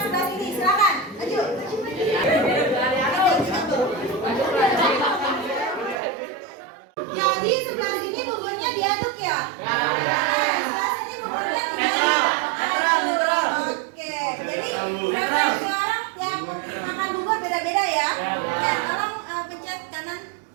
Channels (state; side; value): drops out; left; at 6.0 s